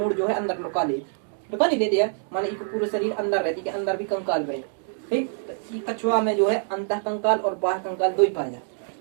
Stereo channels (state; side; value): silent; left; digital silence